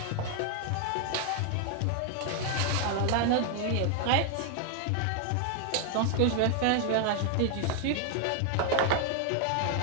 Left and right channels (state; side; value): different; both; correlation 0.00